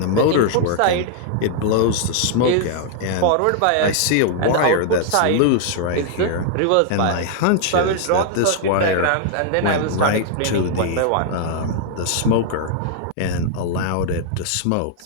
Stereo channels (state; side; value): different; both; correlation -0.01